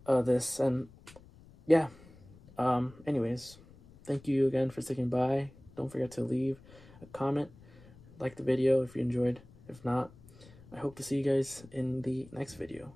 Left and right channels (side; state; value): left; noise; rumble, 23 dB below the sound